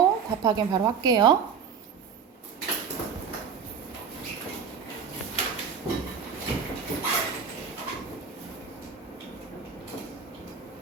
답 확인 바로 할게요.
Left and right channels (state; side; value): quieter; left; 6.5 dB